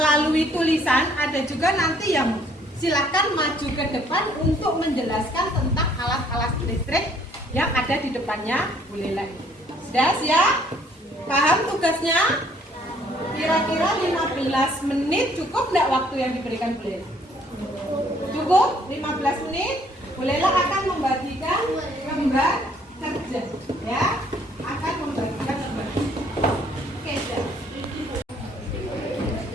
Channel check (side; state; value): both; normal; correlation 0.63